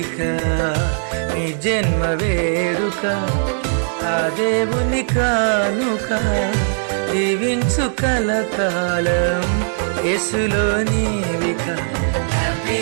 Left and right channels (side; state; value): left; silent; 61 dB below the other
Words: నీ జన్మ వేడుక ఆ దేవుని కానుక, జీవించు కలకాలం యేసులో నీవిక. Happy